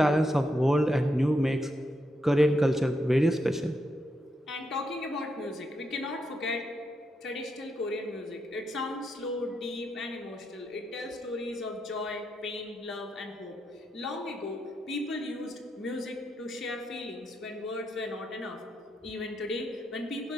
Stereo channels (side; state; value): both; normal; correlation 0.82